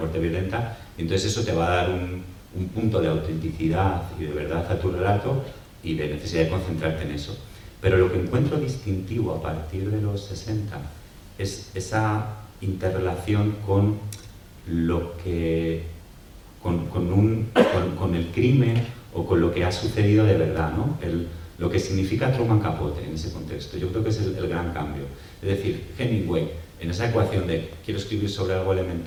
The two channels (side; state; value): both; identical; correlation 1.00